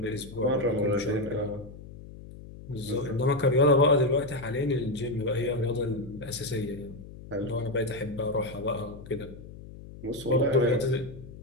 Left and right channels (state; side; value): noise; left; hum, 16 dB below the sound